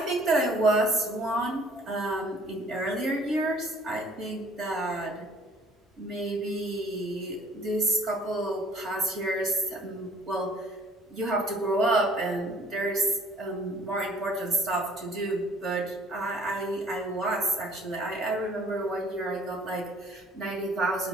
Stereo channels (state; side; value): normal; both; correlation 0.56